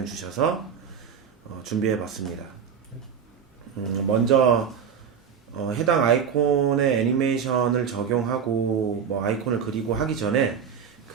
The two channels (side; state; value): left; quieter; 7.2 dB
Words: 주셔서 준비해 봤습니다. 먼저 해당 아이콘의 애니메이션을 적용하고 뭐 아이콘을 그리고 하기 전에